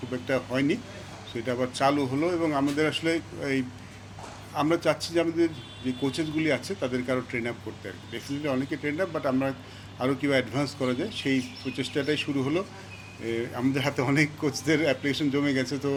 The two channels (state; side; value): identical; both; correlation 1.00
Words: খুব একটা হয়নি, সো এটা আবার চালু হলো। এবং আমাদের আসলে এই আমরা চাচ্ছি যে আমাদের যে কোচেসগুলি আছে তাদেরকে আরও ট্রেন আপ করতে আর কি। ডেফিনেটলি অনেকে ট্রেন আপ, বাট আমরা আরও কীভাবে অ্যাডভান্স করা যায় সেই প্রচেষ্টাটাই শুরু হলো। আমাদের হাতে অনেক কোচদের অ্যাপ্লিকেশন জমে গেছে, তো